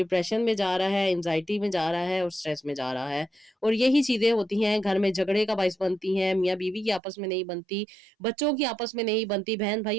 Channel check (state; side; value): drops out; left; at 7.0 s